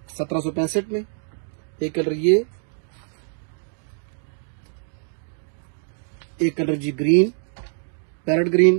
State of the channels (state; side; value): silent; left; digital silence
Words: 1765 में। एक कलर ये, एक कलर जी ग्रीन, पैरेट